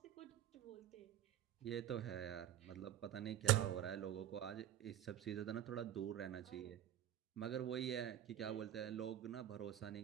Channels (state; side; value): quieter; left; 11.6 dB